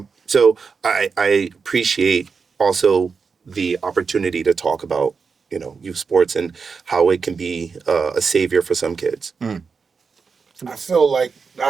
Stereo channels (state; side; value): quieter; left; 5.3 dB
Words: So I appreciate also the opportunity to talk about, youth sports and how it can be a savior for some kids. I feel like